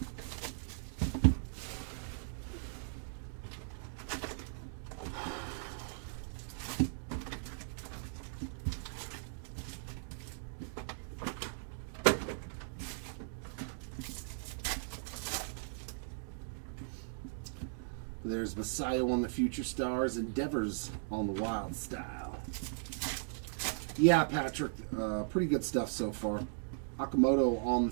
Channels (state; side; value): silent; left; digital silence